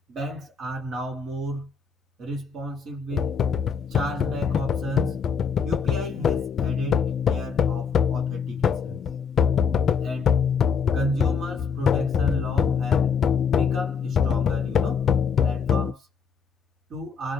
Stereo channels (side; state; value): right; quieter; 6.0 dB